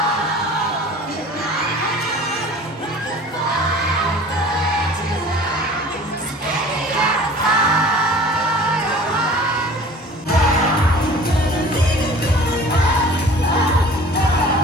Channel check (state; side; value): normal; both; correlation 0.45